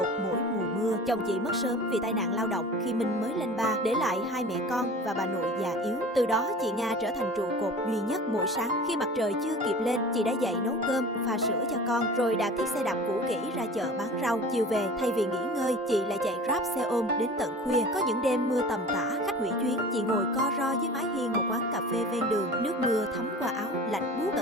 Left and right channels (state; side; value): normal; both; correlation 0.40